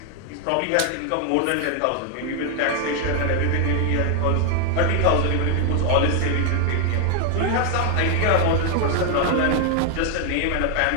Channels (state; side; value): different; both; correlation 0.00